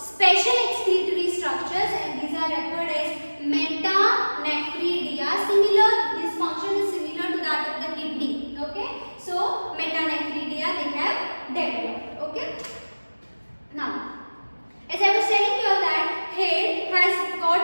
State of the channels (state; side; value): inverted; both; correlation -1.00